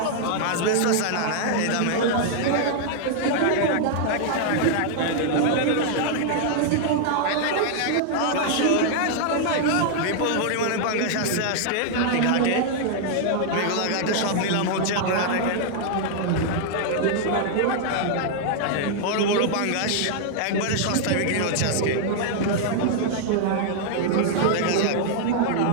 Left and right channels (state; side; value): different; both; correlation 0.00